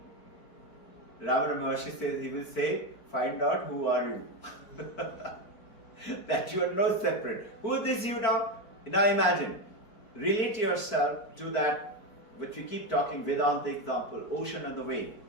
Ravana Maharshi says, he will say, find out who are you. That you are no separate. Who is this you now? Now imagine, relate yourself to that which we keep talking, Vedanta example, ocean and the wave.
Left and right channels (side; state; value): right; late; 4.5 ms